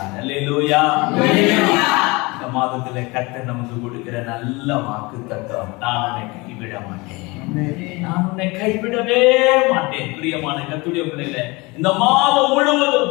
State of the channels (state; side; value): quieter; right; 25.0 dB